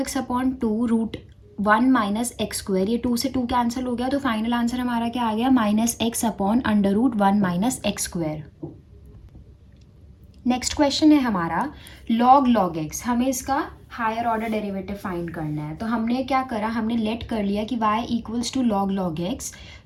upon 2 root 1 minus x square. ये 2 से 2 कैंसिल हो गया. तो फाइनल आंसर हमारा क्या आ गया, minus x upon under root 1 minus x square. Next question है हमारा लॉग लॉग एक्स. हमें इसका हायर ऑर्डर डेरिवेटिव फाइंड करना है. तो हमने क्या करा, हमने लेट कर लिया कि y equals to log log x.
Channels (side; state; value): both; identical; correlation 1.00